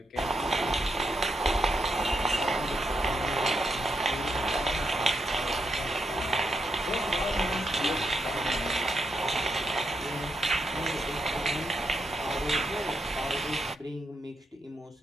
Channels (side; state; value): both; normal; correlation 0.81